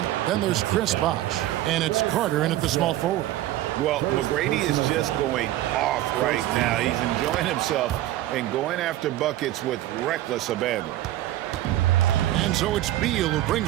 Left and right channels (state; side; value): quieter; left; 14.6 dB